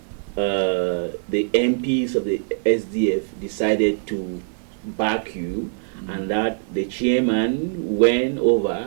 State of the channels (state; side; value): silent; left; digital silence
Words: the MPs of the SDF decided to back you, and that the chairman went